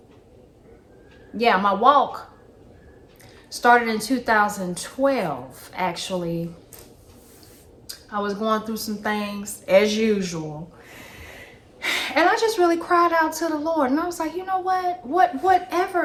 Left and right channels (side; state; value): both; identical; correlation 1.00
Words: yeah, my walk started in 2012, actually. I was going through some things as usual. And I just really cried out to the Lord. And I was like, you know what?